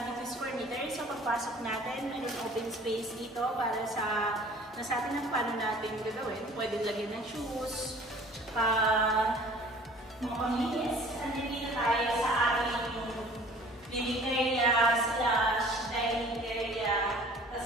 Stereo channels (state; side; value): normal; both; correlation 0.50